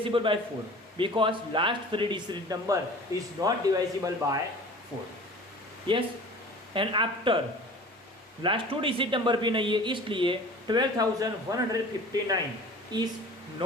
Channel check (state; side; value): normal; both; correlation 0.42